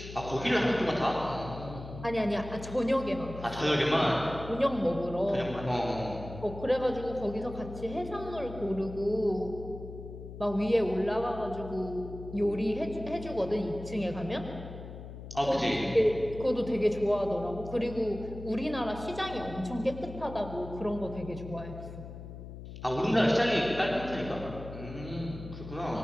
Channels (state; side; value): noise; left; hum, 12 dB below the sound